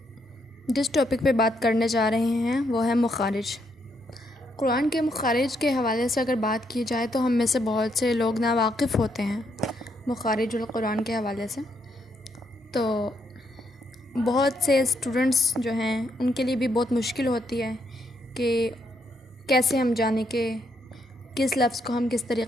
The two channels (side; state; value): both; normal; correlation 0.76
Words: جس ٹاپک پہ بات کرنے جا رہے ہیں وہ ہے مخارج۔ قرآن کے مخارج کے حوالے سے اگر بات کی جائے تو ہم میں سے بہت سے لوگ ناواقف ہوتے ہیں مخارج القرآن کے حوالے سے، تو بہت سے اسٹوڈنٹس جو ہیں ان کے لیے بھی بہت مشکل ہوتی ہے کہ کیسے ہم جانیں کہ کس لفظ کو ہم کس